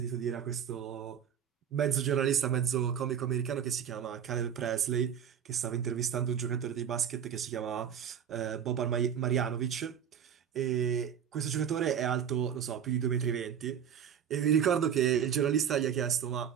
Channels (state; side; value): quieter; left; 8.5 dB